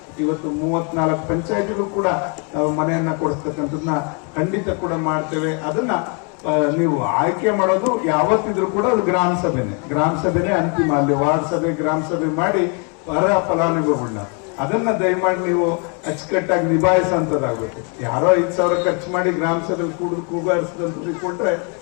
ಇವತ್ತು 34 ಪಂಚಾಯತಿಗೂ ಕೂಡ ನಾವು ಮನೆಯನ್ನ ಕೊಡಿಸ್ತಕ್ಕಂಥದ್ದನ್ನ ಖಂಡಿತ ಕೂಡ ಮಾಡ್ತೇವೆ. ಅದನ್ನ ನೀವು ಆಯ್ಕೆ ಮಾಡೋದು ಯಾವತ್ತಿದ್ರು ಕೂಡ ಅದು ಗ್ರಾಮ ಸಭೆನೆ ಅಂತಿಮ. ಅಲ್ಲಿ ವಾರ್ಡ್ ಸಭೆ, ಗ್ರಾಮ ಸಭೆ ಮಾಡಿ ಅರ್ಹ ಫಲಾನುಭವಿಗಳನ್ನ ಅದನ್ನ ದಯಮಾಡಿ ನೀವು ಅಚ್ಚುಕಟ್ಟಾಗಿ ನಿಭಾಯಿಸಂತದಾಗಬೇಕು. ಯಾರೋ 5,000 ಖರ್ಚು ಮಾಡಿ ಗ್ರಾಮ ಸಭೆಯಲ್ಲಿ ಕೂಗಾರಿಸಿದಂತ ಕೊಟ್ರೆ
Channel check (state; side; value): quieter; right; 36.4 dB